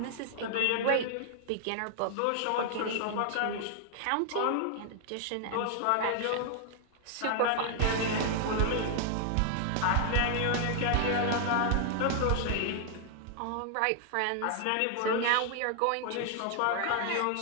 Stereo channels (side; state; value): both; different; correlation 0.00